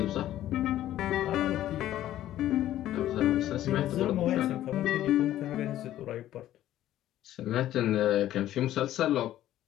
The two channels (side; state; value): right; quieter; 13.1 dB